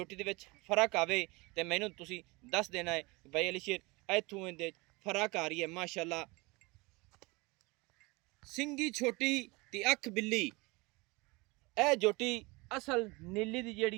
दे विच फर्क आवे ते मैनूं तुसीं दस देना है भाई अली शेर इत्थों इहदे फर्क आ रही है माशाल्लाह। सिंगी छोटी ते अख बिल्ली ए जोटी असल नीली दी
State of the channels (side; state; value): left; quieter; 24.9 dB